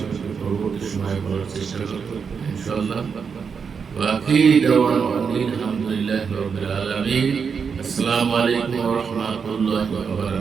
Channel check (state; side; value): quieter; left; 6.1 dB